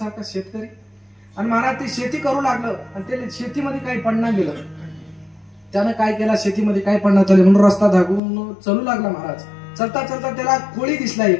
शेतकरी. आणि महाराज ते शेती करू लागलं आणि त्याला शेतीमध्ये काही पडणार गेलं. त्यानं काय केला, शेतीमध्ये काय पडणार चालले म्हणून रस्ता धागून चलू लागला महाराज. चलता चलता त्याला कोळी दिसला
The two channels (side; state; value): right; drops out; at 8.2 s